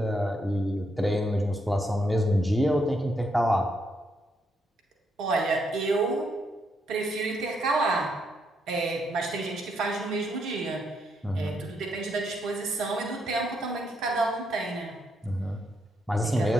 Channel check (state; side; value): normal; both; correlation 0.77